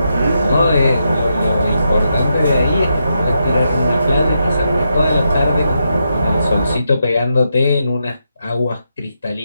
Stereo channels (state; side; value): inverted; both; correlation -0.83